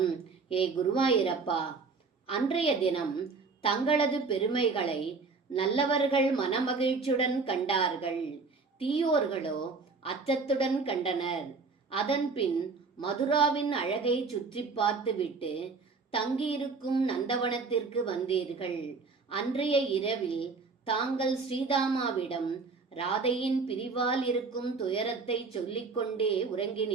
ஏ குருவாயூரப்பா, அன்றைய தினம் தங்களது பெருமைகளை நல்லவர்கள் மனமகிழ்ச்சியுடன் கண்டார்கள், தீயோர்களோ அச்சத்துடன் கண்டனர். அதன்பின் மதுராவின் அழகை சுற்றி பார்த்துவிட்டு தங்கியிருக்கும் நந்தவனத்திற்கு வந்தீர்கள். அன்றைய இரவில் தாங்கள் ஸ்ரீதாமாவிடம் ராதையின் பிரிவால் இருக்கும் துயரத்தை சொல்லிக்கொண்டே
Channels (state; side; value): quieter; left; 4.4 dB